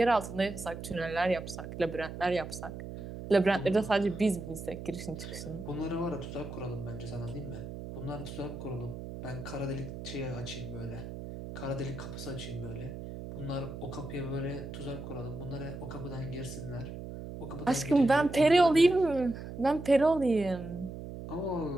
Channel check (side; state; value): right; noise; hum, 9 dB below the sound